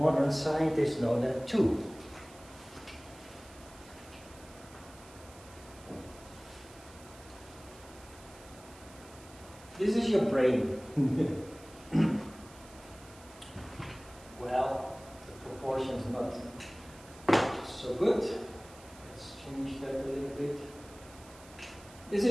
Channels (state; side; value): noise; right; hiss, 21 dB below the sound